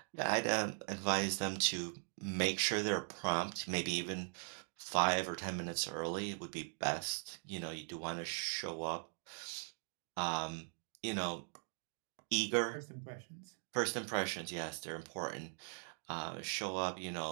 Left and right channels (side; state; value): left; silent; 51 dB below the other